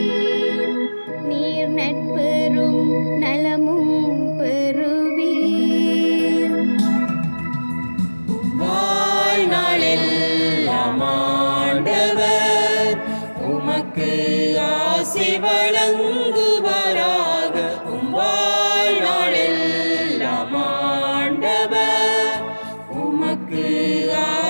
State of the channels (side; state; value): both; inverted; correlation -1.00